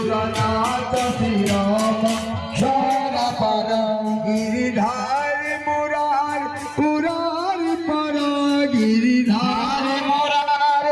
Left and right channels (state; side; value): identical; both; correlation 1.00